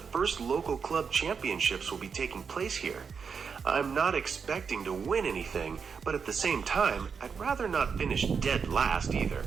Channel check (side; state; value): left; quieter; 6.0 dB